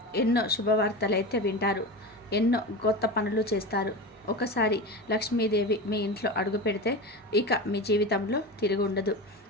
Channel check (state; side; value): normal; both; correlation 0.26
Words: ఎన్నో శుభవార్తలు అయితే వింటారు. ఎన్నో కొత్త పనులు చేస్తారు. ఒకసారి లక్ష్మీదేవి మీ ఇంట్లో అడుగు పెడితే ఇక మీ జీవితంలో తిరిగి ఉండదు.